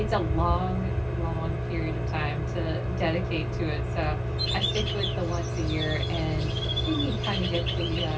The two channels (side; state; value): both; identical; correlation 1.00